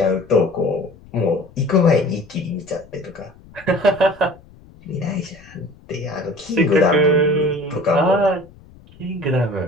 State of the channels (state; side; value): noise; left; rumble, 24 dB below the sound